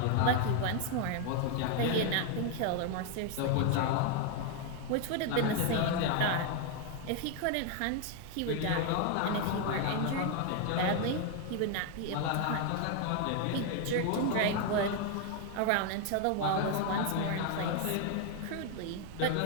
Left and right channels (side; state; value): both; different; correlation 0.01